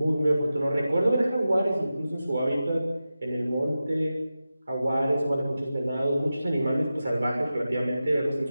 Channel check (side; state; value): both; inverted; correlation -0.93